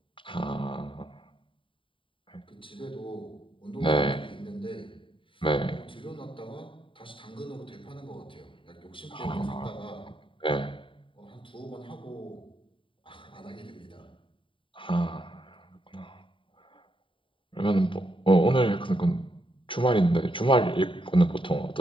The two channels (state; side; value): late; right; 0.25 ms